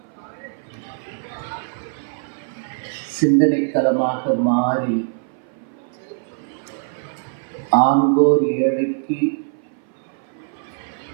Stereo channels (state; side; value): silent; left; 58 dB below the other